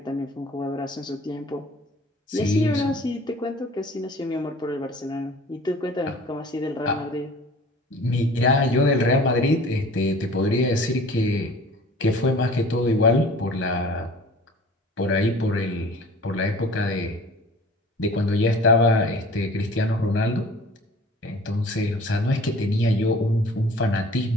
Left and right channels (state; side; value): normal; both; correlation 0.46